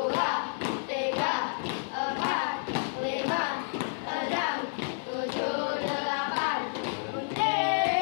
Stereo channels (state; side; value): silent; right; 58 dB below the other